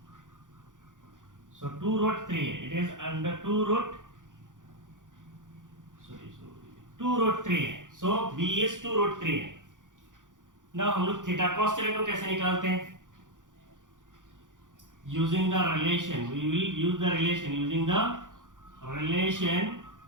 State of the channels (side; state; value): left; late; 0.87 ms